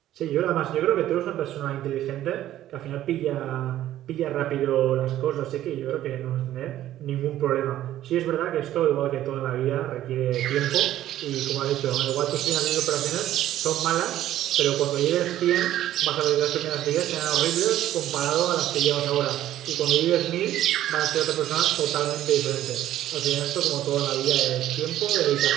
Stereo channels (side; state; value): left; quieter; 13.1 dB